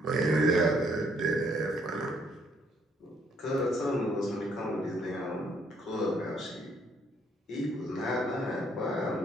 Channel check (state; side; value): normal; both; correlation 0.68